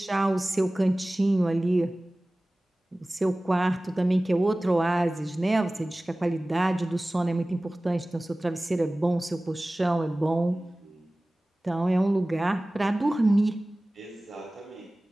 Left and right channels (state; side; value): normal; both; correlation 0.98